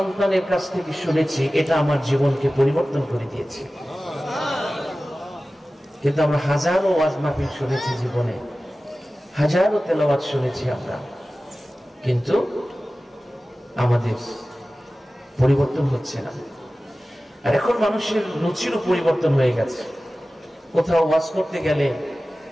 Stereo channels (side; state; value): both; normal; correlation 0.96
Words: কাছ থেকে শুনেছি, এটা আমার জীবনকে পরিবর্তন করে দিয়েছে। কিন্তু আমরা হাজারো ওয়াজ মাহফিল শুনেছি জীবনে, হাজারো তেলাওয়াত শুনেছি আমরা, কিন্তু আমাদের পরিবর্তন হচ্ছে না। আর এখন মানুষের রুচিরও পরিবর্তন হয়ে গেছে। কোথাও ওয়াজ করতে গেলে